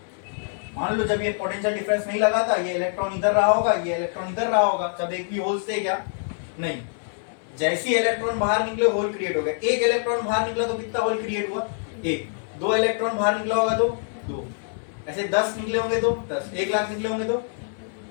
मान लो जब ये पोटेंशियल डिफरेंस नहीं लगा था, ये इलेक्ट्रॉन इधर रहा होगा, ये इलेक्ट्रॉन इधर रहा होगा, जब एक भी होल्स थे क्या? नहीं। जैसे ही इलेक्ट्रॉन बाहर निकले होल क्रिएट हो गया। एक इलेक्ट्रॉन बाहर निकला तो कितना होल क्रिएट हुआ? एक। दो इलेक्ट्रॉन बाहर निकला होगा तो दो। ऐसे 10 निकले होंगे तो 10, 1 लाख निकले होंगे तो,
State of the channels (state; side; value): silent; right; digital silence